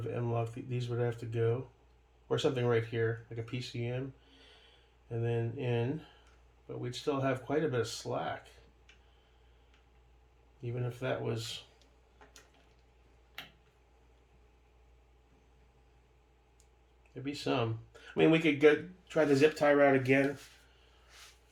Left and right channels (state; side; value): identical; both; correlation 1.00